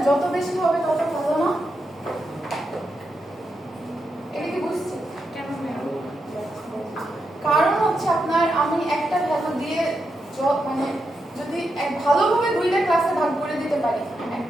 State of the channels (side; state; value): both; normal; correlation 0.85